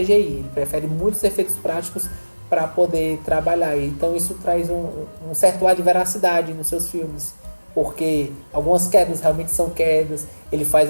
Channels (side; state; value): both; inverted; correlation -1.00